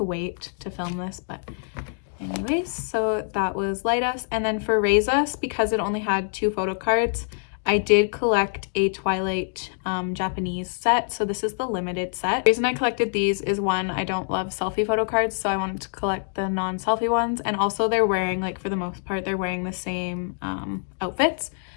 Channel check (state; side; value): silent; right; digital silence